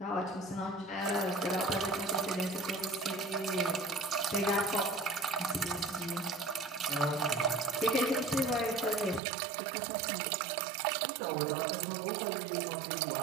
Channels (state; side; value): drops out; left; at 9.2 s